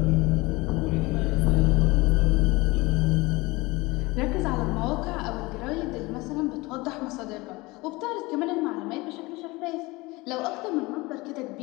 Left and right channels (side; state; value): right; quieter; 22.7 dB